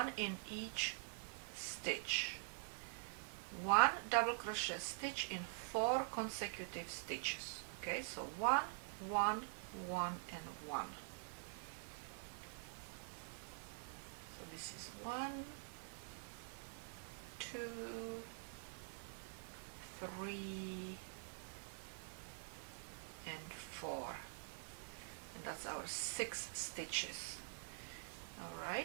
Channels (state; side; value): silent; left; digital silence